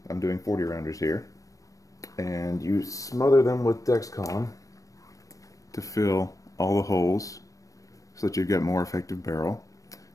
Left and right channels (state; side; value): late; right; 0.16 ms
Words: I'm doing 40 rounders here, and you smother them with Dexcom to fill all the holes so that you get more effective barrel.